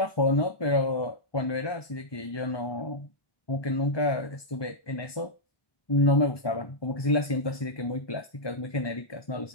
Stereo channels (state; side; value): late; right; 1.2 ms